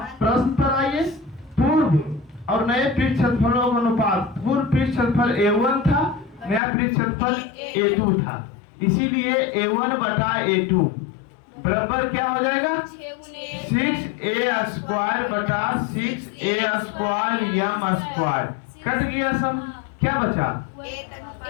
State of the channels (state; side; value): drops out; right; at 6.6 s